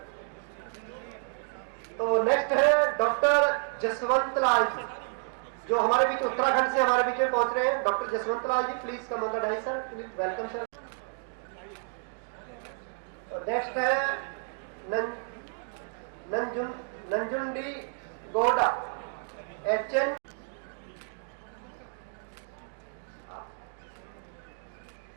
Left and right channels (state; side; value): silent; left; 58 dB below the other